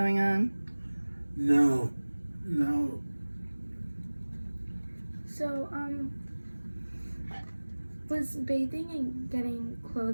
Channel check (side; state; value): both; inverted; correlation -1.00